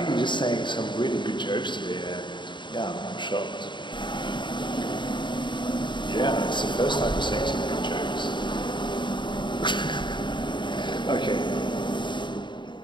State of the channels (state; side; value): late; right; 0.23 ms